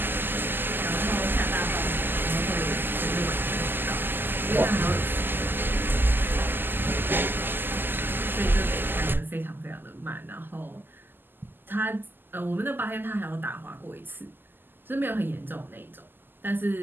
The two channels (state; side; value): late; left; 0.094 ms